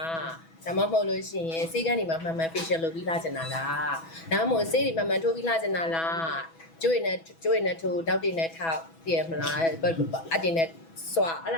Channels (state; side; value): late; right; 6.1 ms